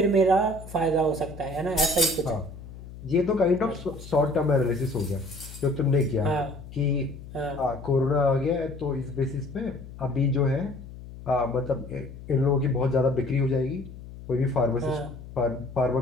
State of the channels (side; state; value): left; noise; hum, 14 dB below the sound